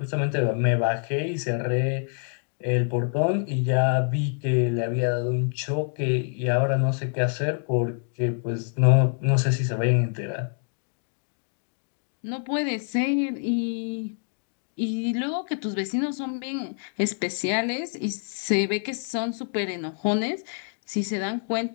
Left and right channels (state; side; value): silent; right; 61 dB below the other